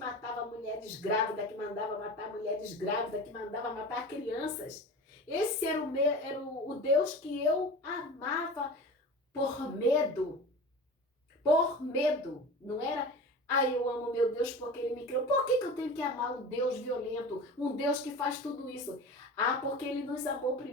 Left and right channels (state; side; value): normal; both; correlation 0.34